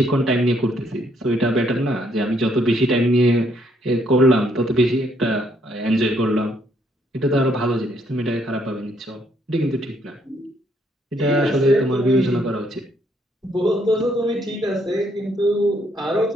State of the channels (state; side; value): normal; both; correlation 0.71